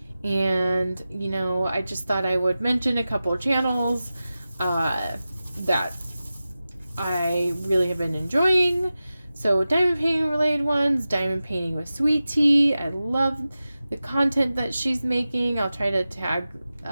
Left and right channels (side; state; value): both; inverted; correlation -0.94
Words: And, you know, I just thought I would mention a couple of channels that I really have been enjoying. So diamond painting related ones, diamond painting with Sweet Tea. I love the content that she's making. I'll try to tag